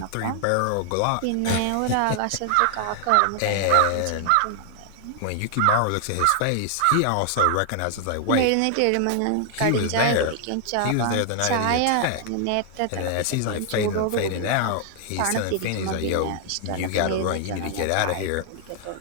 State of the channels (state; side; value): different; both; correlation 0.00